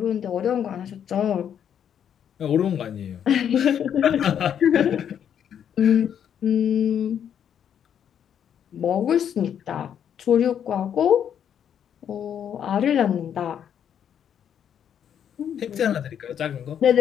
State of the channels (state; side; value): quieter; right; 8.9 dB